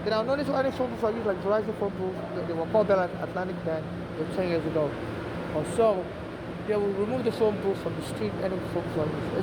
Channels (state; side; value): identical; both; correlation 1.00